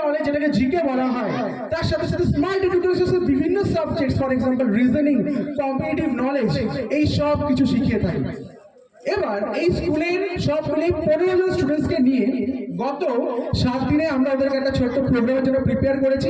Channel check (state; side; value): identical; both; correlation 1.00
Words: নলেজ যেটাকে জিকে বলা হয়, তার সাথে সাথে স্মার্ট এডুকেশনের বিভিন্ন subjects, for example reasoning, competitive knowledge, এই সব কিছু শিখিয়ে থাকি। এবার এই স্কুলের সবগুলি 15 জন স্টুডেন্টসকে নিয়ে গত 7 দিনে আমরা ওদেরকে একটা ছোট্ট প্রোগ্রামের জন্য প্রিপেয়ার করেছি,